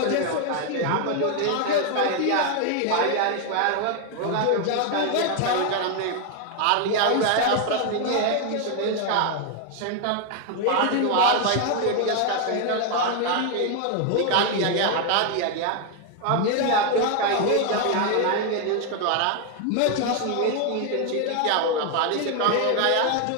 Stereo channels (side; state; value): both; different; correlation 0.01